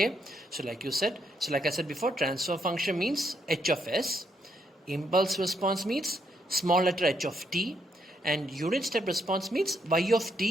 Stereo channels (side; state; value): both; normal; correlation 0.76